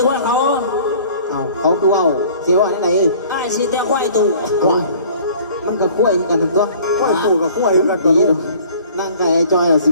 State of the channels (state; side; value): inverted; both; correlation -0.50